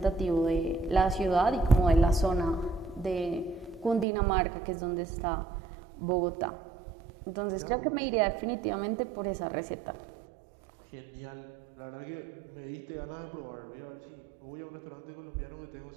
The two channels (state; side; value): drops out; left; at 4.0 s